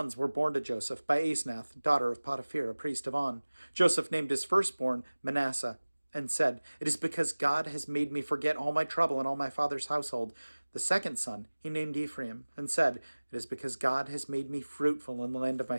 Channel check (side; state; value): both; inverted; correlation -1.00